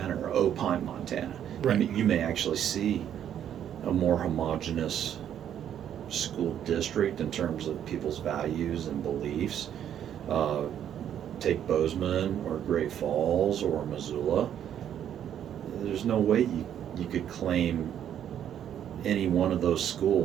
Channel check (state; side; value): quieter; left; 9.9 dB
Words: or Opine, Montana. Right. You may actually see a more homogenous school district in terms of people's values and beliefs. Uh, Take Bozeman or Great Falls or Missoula. There's no way you could claim any one of those